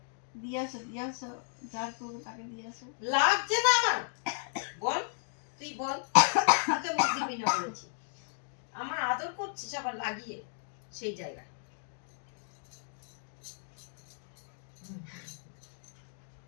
দিয়ে আসো যার করবো তাকে দিয়ে আসো। লাগছে না আমার, বল তুই বল, আমাকে মুখ দিবি না বলেছি। আমার আদর করছিস আবার লাগিয়ে সেই জায়গায়।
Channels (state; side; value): silent; right; digital silence